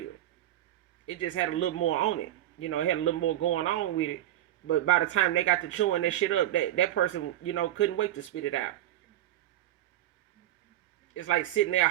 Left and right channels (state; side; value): quieter; left; 13.4 dB